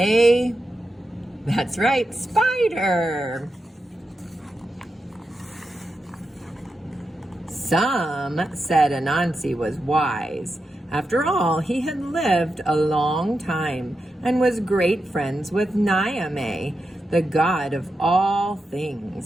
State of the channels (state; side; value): normal; both; correlation 0.88